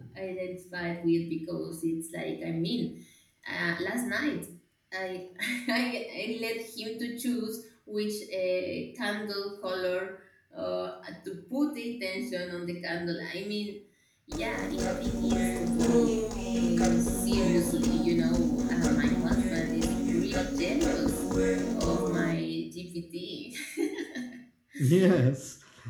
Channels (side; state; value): both; identical; correlation 1.00